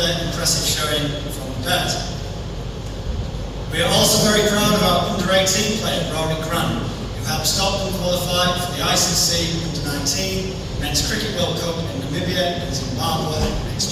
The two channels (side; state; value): both; identical; correlation 1.00